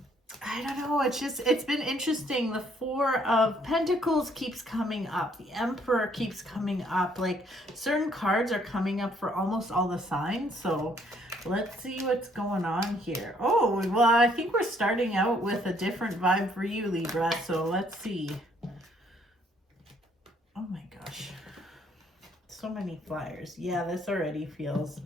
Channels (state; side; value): normal; both; correlation 0.66